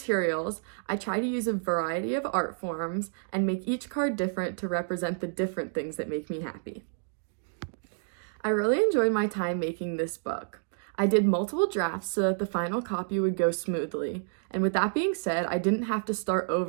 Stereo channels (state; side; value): silent; left; digital silence